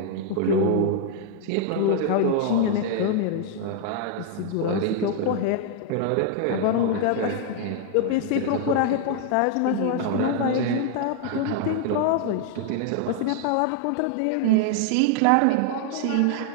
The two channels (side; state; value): both; different; correlation 0.00